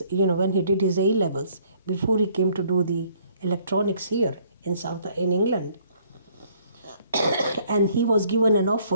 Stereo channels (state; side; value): inverted; both; correlation -0.62